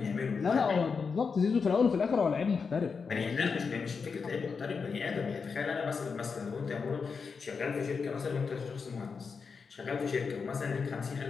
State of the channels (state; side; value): quieter; right; 5.4 dB